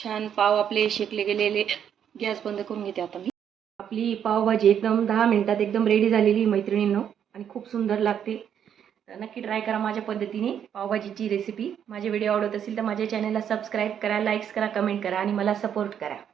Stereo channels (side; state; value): left; quieter; 8.8 dB